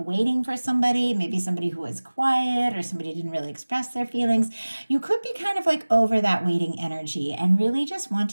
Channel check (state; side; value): inverted; both; correlation -1.00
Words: for somebody, maybe somebody who was quiet or somebody didn't really express their feelings, you could be kind of like over that waiting energy and really just